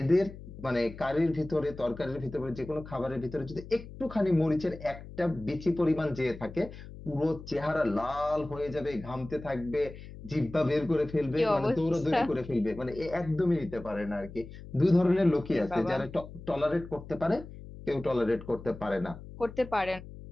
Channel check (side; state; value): left; noise; hum, 14 dB below the sound